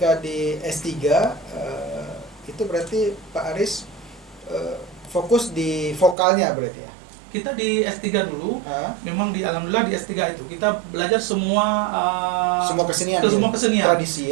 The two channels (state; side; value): drops out; left; at 6.2 s